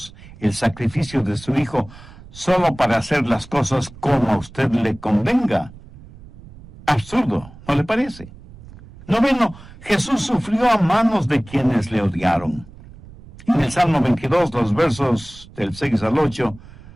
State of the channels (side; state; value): right; noise; rumble, 20 dB below the sound